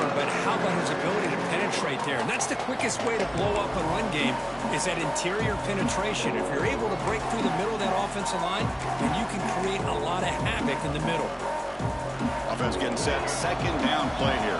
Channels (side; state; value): both; identical; correlation 1.00